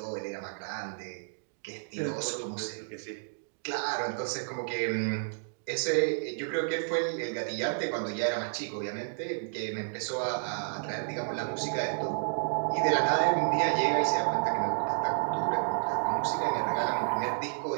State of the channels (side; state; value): left; silent; digital silence